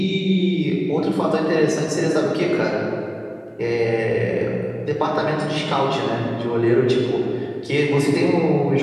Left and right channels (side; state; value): both; identical; correlation 1.00